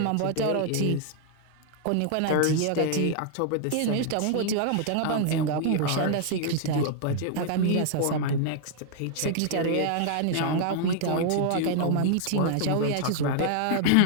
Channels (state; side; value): different; both; correlation 0.00